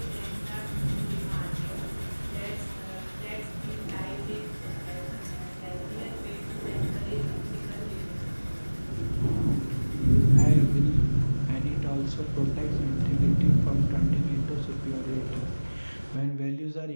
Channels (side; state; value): both; inverted; correlation -1.00